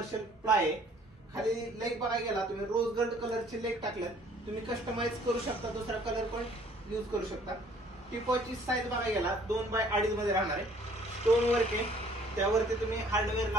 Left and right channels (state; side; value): normal; both; correlation 0.57